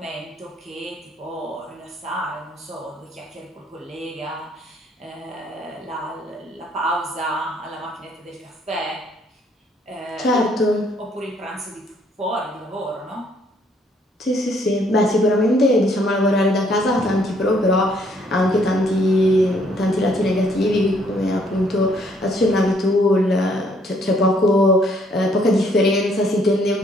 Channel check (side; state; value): both; normal; correlation 0.66